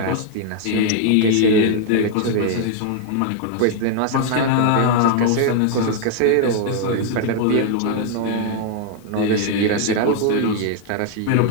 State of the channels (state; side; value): different; both; correlation 0.00